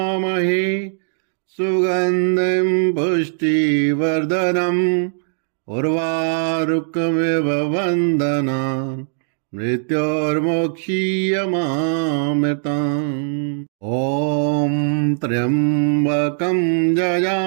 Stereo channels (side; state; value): left; silent; digital silence